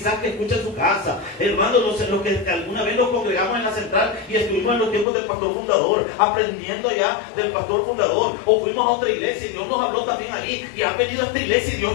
que escuche en su casa. Hermanos, los que alguna vez nos congregamos en la central y estuvimos en los tiempos del pastor fundador, aprendiendo ya del pastor fundador, o fuimos a otra iglesia y Dios nos habló también ahí, y has venido a esta iglesia y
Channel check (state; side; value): drops out; right; at 5.1 s